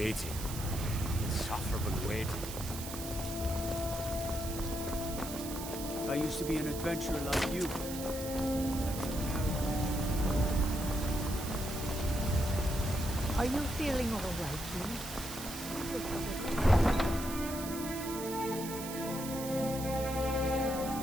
Insufferable waiting. I used to be an adventurer like you. Are you feeling all right, Lee?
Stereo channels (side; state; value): right; noise; hiss, 9 dB below the sound